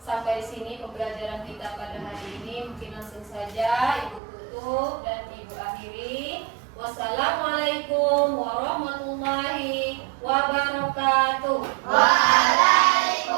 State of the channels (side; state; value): left; drops out; at 4.2 s